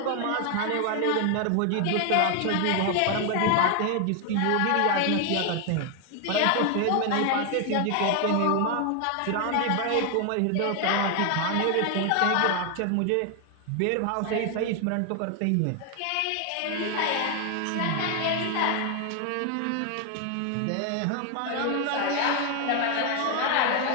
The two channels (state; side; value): different; both; correlation 0.01